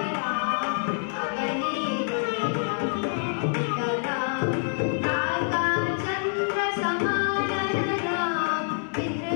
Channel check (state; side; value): silent; right; digital silence